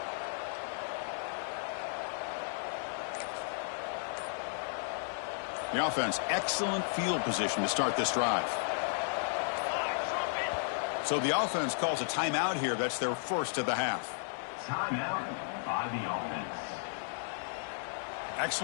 The offense, excellent field position to start this drive. So the offense calls a timeout here. That's their first of the half. Timeout by the offense.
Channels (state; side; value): silent; right; digital silence